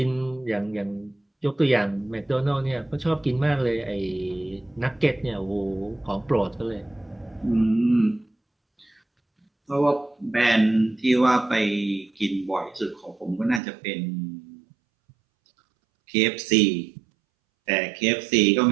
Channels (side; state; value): left; drops out; at 13.6 s